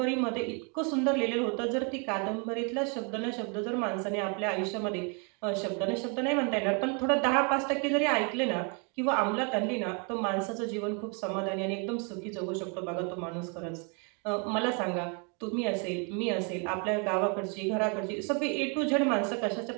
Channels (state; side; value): quieter; left; 35.5 dB